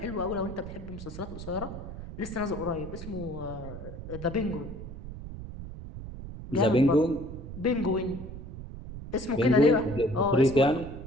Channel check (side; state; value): right; noise; rumble, 11 dB below the sound